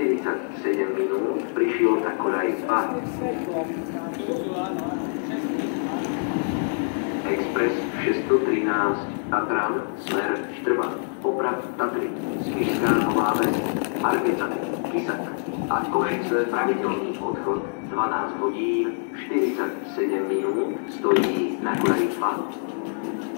minút, prišiel na koľaj 2. Expres 613 Tatran, smer Štrba, Oprad, Tatry, Spišská Nová Ves, Margecany, Kisak a Košice, pravidelný odchod 12 hodín 47 minút, stojí na koľaj 2.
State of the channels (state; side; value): silent; right; digital silence